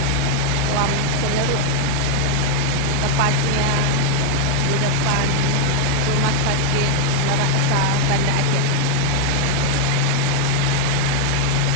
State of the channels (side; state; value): both; different; correlation 0.00